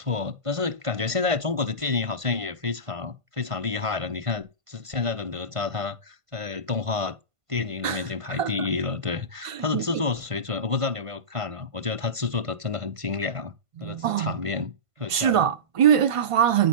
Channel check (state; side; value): late; left; 1.5 ms